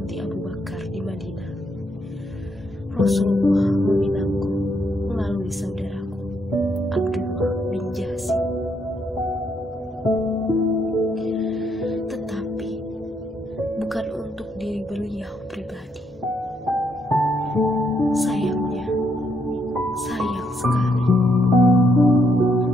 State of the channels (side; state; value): both; normal; correlation 0.74